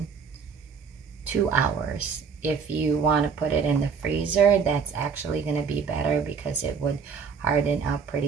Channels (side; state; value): left; quieter; 6.0 dB